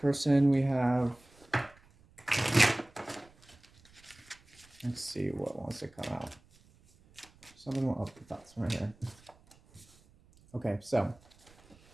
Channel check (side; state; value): right; noise; rumble, 28 dB below the sound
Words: we have, let's see what wants to come out. Something will up the thoughts right here. Okay, so